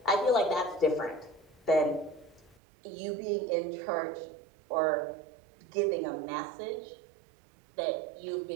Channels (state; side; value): drops out; left; at 2.6 s